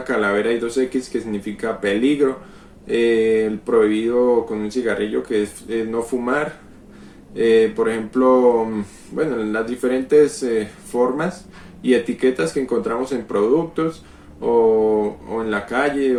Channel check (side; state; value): both; identical; correlation 1.00